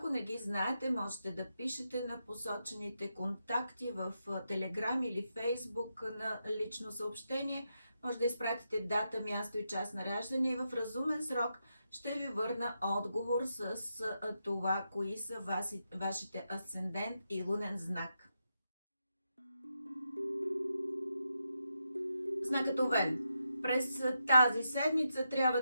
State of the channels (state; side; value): inverted; both; correlation -0.85